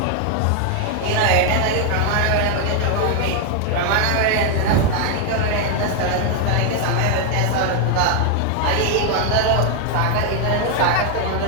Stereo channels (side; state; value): both; different; correlation 0.00